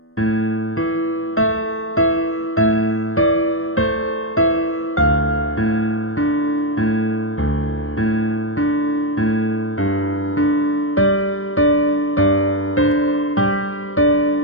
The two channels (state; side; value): late; right; 0.62 ms